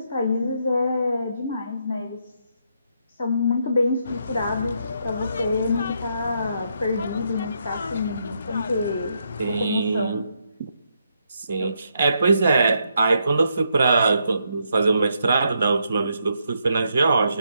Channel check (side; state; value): both; inverted; correlation -0.78